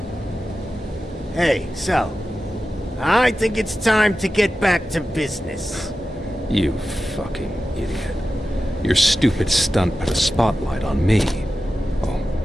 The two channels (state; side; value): normal; both; correlation 0.93